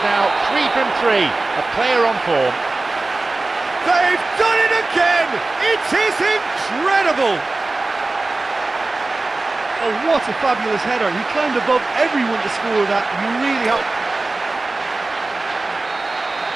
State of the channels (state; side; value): quieter; left; 3.2 dB